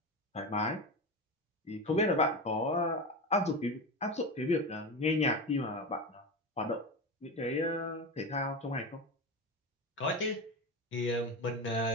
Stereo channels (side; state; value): both; normal; correlation 0.21